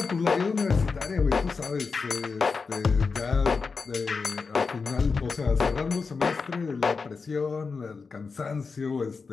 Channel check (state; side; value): quieter; right; 4.8 dB